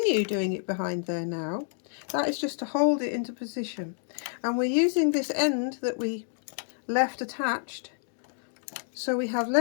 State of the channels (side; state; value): right; silent; 59 dB below the other